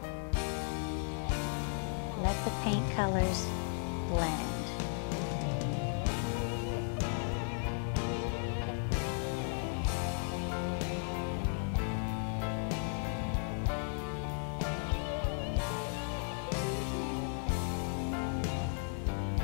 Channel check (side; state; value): right; silent; 54 dB below the other